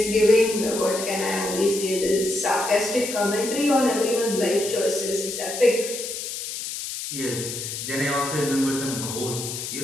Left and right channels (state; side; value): noise; left; hiss, 6 dB below the sound